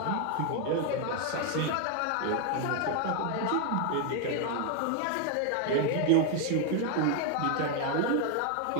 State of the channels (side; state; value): both; different; correlation 0.00